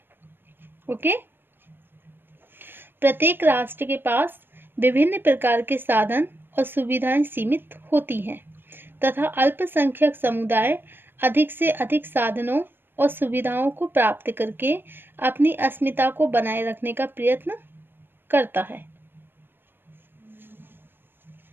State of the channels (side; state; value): left; late; 0.098 ms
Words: ओके? प्रत्येक राष्ट्र के पास विभिन्न प्रकार के साधन और सुविधाएं सीमित होती हैं तथा अल्पसंख्यक समुदाय अधिक से अधिक साधनों और सुविधाओं को प्राप्त करके अपनी अस्मिता को बनाए रखने का प्रयत्न करता है.